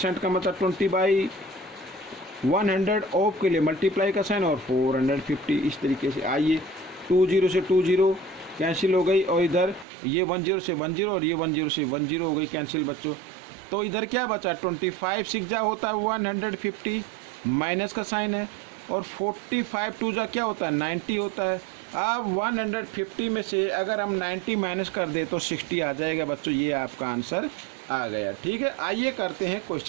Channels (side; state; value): left; drops out; at 9.9 s